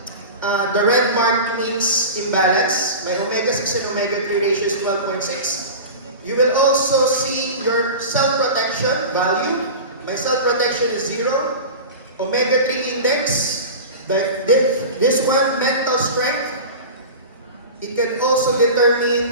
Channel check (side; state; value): both; inverted; correlation -0.31